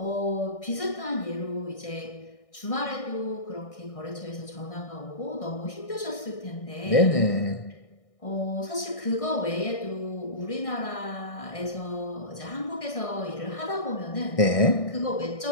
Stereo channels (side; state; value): right; late; 1.6 ms